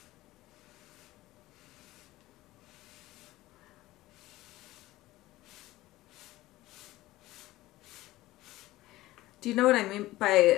Do you know what I mean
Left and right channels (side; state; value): right; quieter; 17.2 dB